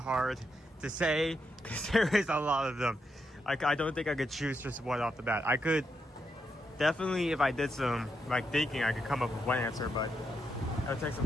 to say because there is a lot of them. I don't think I could choose just one off the bat. I could definitely, if I did some thinking, I could come up with one answer, but it would take some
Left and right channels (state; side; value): normal; both; correlation 0.83